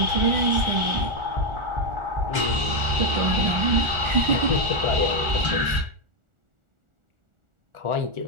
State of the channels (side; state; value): left; late; 1.4 ms